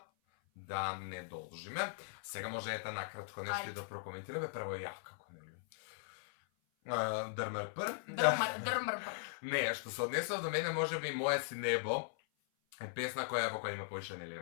да не должиме. Сега може ета накратко нешто Ајде. да прокоментираме. Прво ја, како нели? Дрмрпр. Дрмрпр. Не, што се однесува до мене, може би Моје си небо е песна во која има поише нели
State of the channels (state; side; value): silent; right; 52 dB below the other